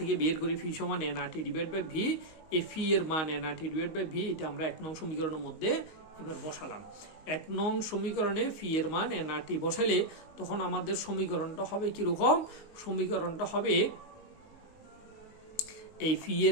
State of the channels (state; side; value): late; right; 19 ms